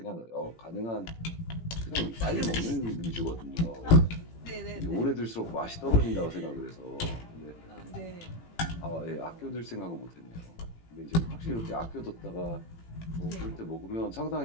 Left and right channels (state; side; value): late; right; 18 ms